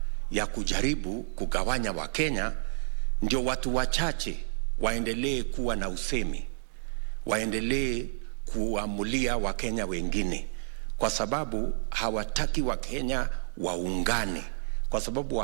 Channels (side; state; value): left; silent; digital silence